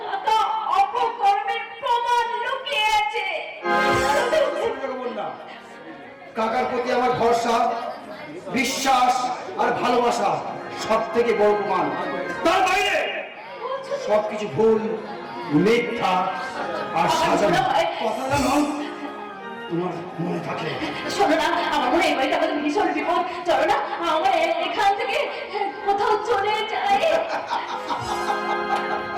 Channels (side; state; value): both; identical; correlation 1.00